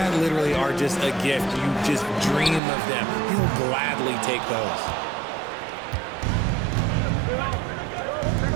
literally are just a gift. You just dream of them. He'll gladly take those.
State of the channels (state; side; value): drops out; left; at 2.6 s